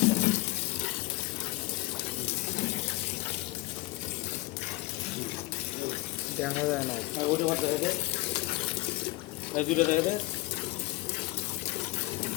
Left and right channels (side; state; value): right; quieter; 21.8 dB